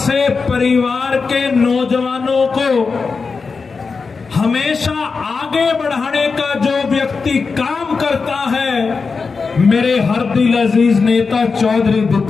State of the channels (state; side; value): quieter; right; 4.8 dB